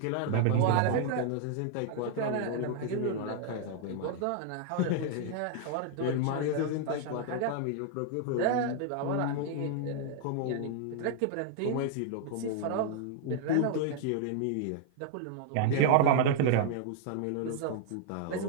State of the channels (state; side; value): different; both; correlation 0.00